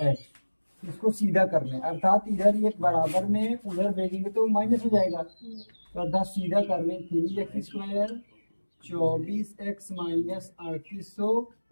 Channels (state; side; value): inverted; both; correlation -1.00